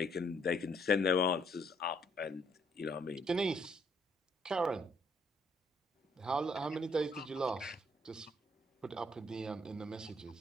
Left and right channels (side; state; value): both; normal; correlation 0.68